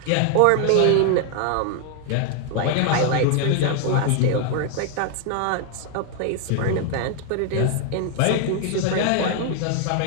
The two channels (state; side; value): different; both; correlation 0.00